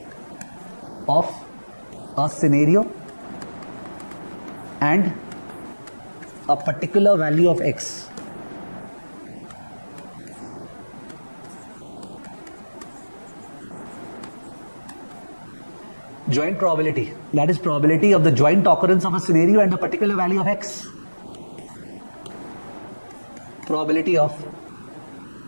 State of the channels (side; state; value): both; inverted; correlation -1.00